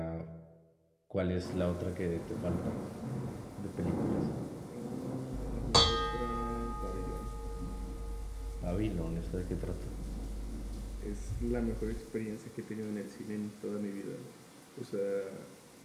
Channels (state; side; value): identical; both; correlation 1.00